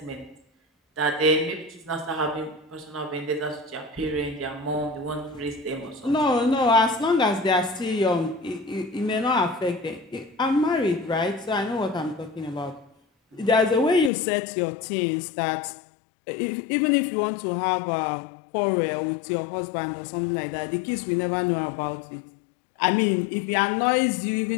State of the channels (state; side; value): drops out; right; at 14.1 s